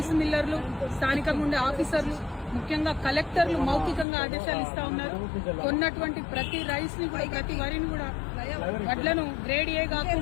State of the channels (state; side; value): drops out; right; at 4.0 s